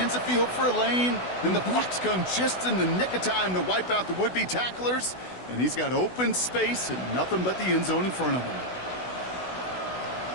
the field for a lane, then the blocks come just in the nick of time to wipe out the would-be tacklers, and he's got open space and nothing but the end zone in front of him.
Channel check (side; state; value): right; late; 16 ms